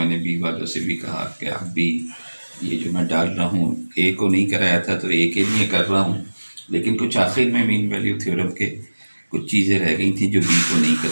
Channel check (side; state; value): both; inverted; correlation -1.00